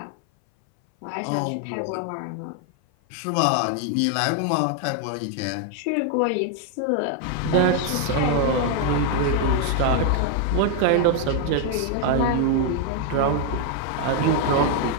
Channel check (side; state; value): both; different; correlation 0.01